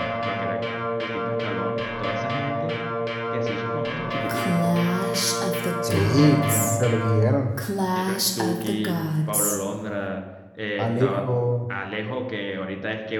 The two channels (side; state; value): both; identical; correlation 1.00